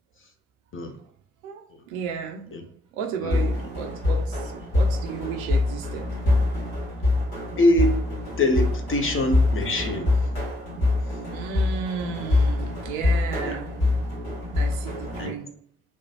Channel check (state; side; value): normal; both; correlation 0.74